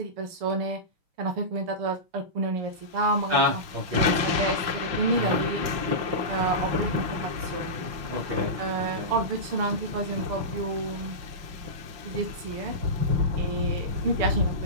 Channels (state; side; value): late; left; 5.8 ms